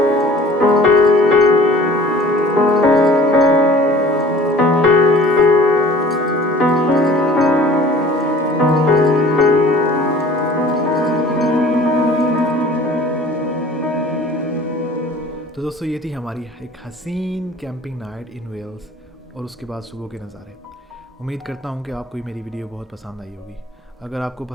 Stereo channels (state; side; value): normal; both; correlation 0.49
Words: تو دوستو یہ تھی ہماری ایک حسین کیمپنگ نائٹ ان ویلز، اور اس کے بعد صبح کے نظارے۔ امید کرتا ہوں کہ آپ کو میری ویڈیو بہت پسند آئی ہوگی۔ اگر آپ کو